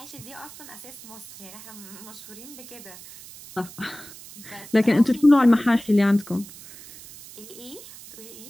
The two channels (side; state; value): right; noise; hiss, 17 dB below the sound